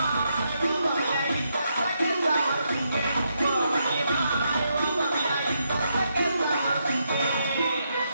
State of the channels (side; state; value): both; inverted; correlation -0.80